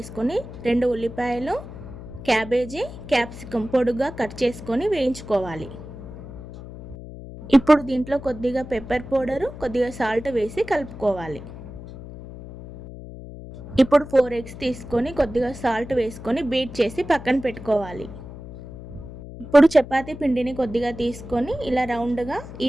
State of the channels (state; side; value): noise; left; hum, 13 dB below the sound